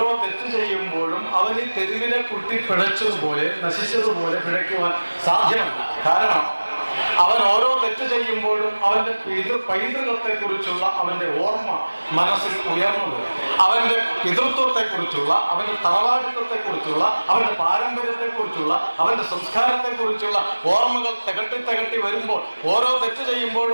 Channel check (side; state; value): both; inverted; correlation -1.00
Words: തെറ്റ് ചെയ്യുമ്പോഴും അവൻ ഈ തെരുവിലെ കുട്ടി പിഴച്ചതുപോലെ നശിച്ചതുപോലെ പിഴയ്ക്കുവാൻ സാധ്യമല്ല. കാരണം അവൻ ഓരോ തെറ്റ് ചെയ്യുമ്പോഴും അവന്റെ പൈതൃകത്തെ കുറിച്ചുള്ള അവന്റെ ഓർമ്മ മനസ്സിൽ ഉയർന്നത്, അവന്റെ പിതൃത്വത്തെ കുറിച്ചുള്ള, അവന്റെ തറവാടിത്വത്തെ കുറിച്ചുള്ള, അവന്റെ പാരമ്പര്യത്തെ കുറിച്ചുള്ള, അവന്റെ സംസ്കാരത്തെ കുറിച്ചുള്ള ഓർമ്മകൾ തികട്ടി വരുമ്പോൾ ഓരോ തെറ്റ്